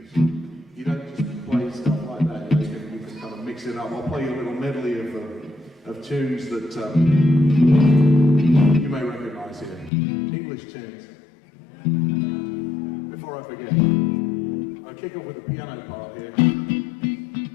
you don't just play stuff like that. You can kind of mix it up. I'll play you a little medley of tunes that you may recognize here. English tunes. Before I forget, I'll kick off with the piano part here.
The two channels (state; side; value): drops out; right; at 9.9 s